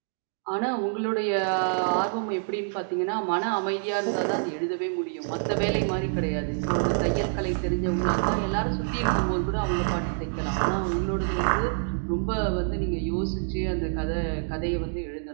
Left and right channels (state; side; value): silent; left; digital silence